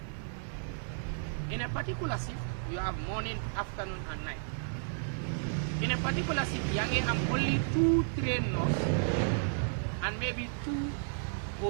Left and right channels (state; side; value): silent; left; digital silence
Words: In a particular shift, you have morning, afternoon, and night. In a particular shift, you have only 2 trained nurses and maybe 2